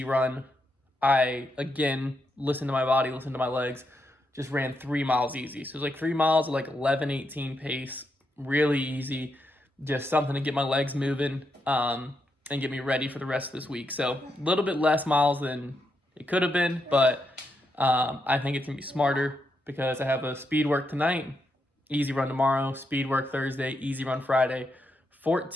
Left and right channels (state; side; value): normal; both; correlation 0.82